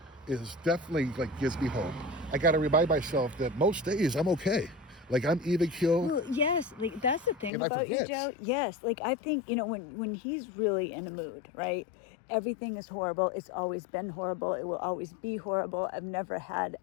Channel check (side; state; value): right; drops out; at 7.5 s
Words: is definitely, like, gives me hope. I got to remind myself that most days I'm okay. Like, I'm even keeled. Well, yes, like that's the thing And I about you, forget. Joe. Yes, like I think when he's really in a mood, right? Everything is horrible. It's always been horrible. It will always be horrible. I've never had